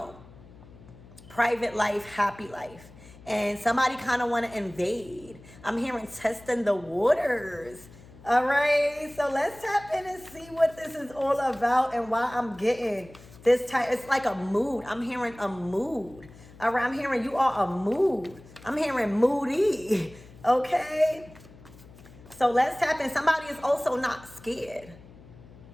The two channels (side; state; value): left; noise; hum, 21 dB below the sound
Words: private life, happy life. And somebody kind of want to invade. I'm hearing testing the waters. All right, so let's tap in and see what this is all about and why I'm getting this type. It's like a mood. I'm hearing a mood. All right, I'm hearing you are a mood. I'm hearing moody, okay? So let's tap in. Somebody is also not scared